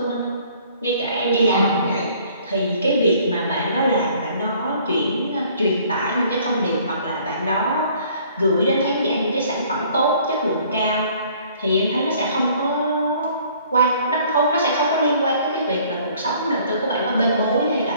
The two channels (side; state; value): both; inverted; correlation -0.57